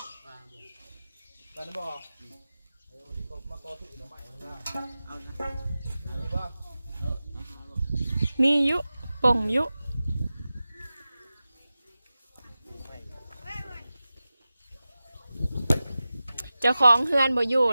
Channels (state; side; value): inverted; both; correlation -0.95